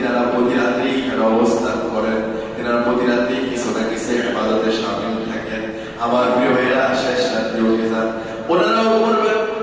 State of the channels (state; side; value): identical; both; correlation 1.00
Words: প্রতি রাতেই এখানে অবস্থান করেন, তিনারা প্রতি রাতেই কিছু না কিছু ইবাদতে শামিল থাকেন। আমার প্রিয় ভাইয়েরা, শেষ রাত্রে উঠে যান, ওনারাও করবেন,